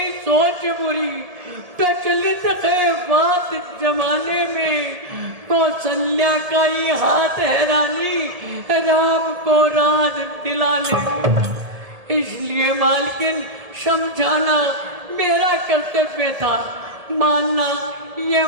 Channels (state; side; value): late; left; 1.7 ms